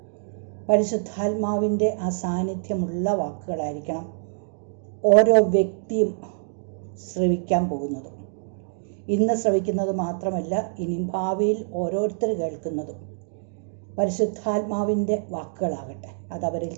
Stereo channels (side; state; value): left; silent; digital silence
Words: പരിശുദ്ധാത്മാവിൻ്റെ ആ സാന്നിധ്യമുള്ള വാക്കുകളായിരിക്കണം ഓരോ വ്യക്തിയും ശ്രവിക്കാൻ പോകുന്നതും. ഇന്ന് ശ്രവിക്കുന്നത് മാത്രമല്ല, ഇനി ഭാവിയിൽ ഓരോരുത്തർ കേൾക്കുന്നതും പരിശുദ്ധാത്മാവിൻ്റെ വാക്കുകളാകട്ടെ. അതവരിൽ